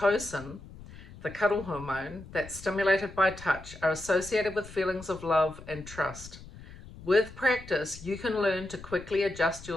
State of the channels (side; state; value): left; noise; rumble, 16 dB below the sound